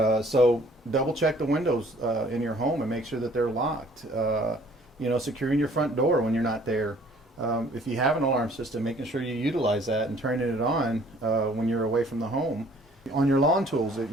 so double check the windows in your home and make sure that they're locked. securing your front door when you're not there. If you have an alarm system, making sure you utilize that and turning it on when you're away from the home. On your lawn tools that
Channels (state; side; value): normal; both; correlation 0.57